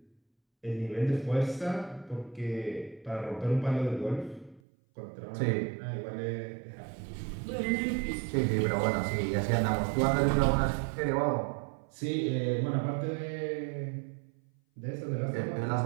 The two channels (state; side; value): drops out; left; at 4.6 s